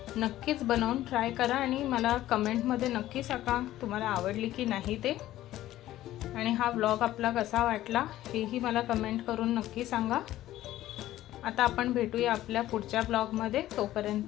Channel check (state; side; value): quieter; right; 14.4 dB